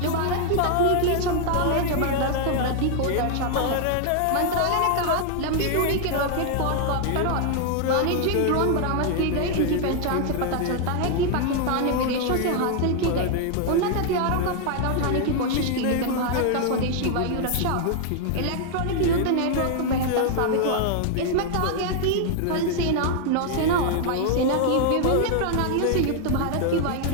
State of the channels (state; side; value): different; both; correlation 0.00